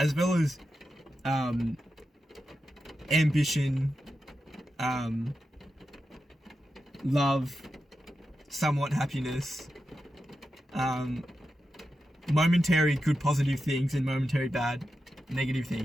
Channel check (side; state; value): both; normal; correlation 0.89